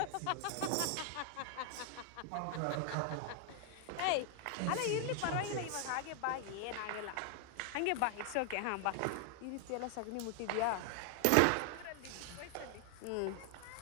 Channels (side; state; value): both; different; correlation 0.00